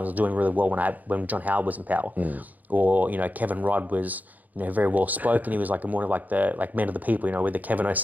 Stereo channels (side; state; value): left; late; 0.081 ms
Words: doing really well when John Howard was in power," or you know, Kevin Rudd was very well spoken. He was like more of like the man of the people, you know, with the Kevin